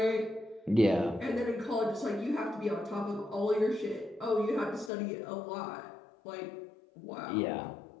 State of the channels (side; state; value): right; drops out; at 4.9 s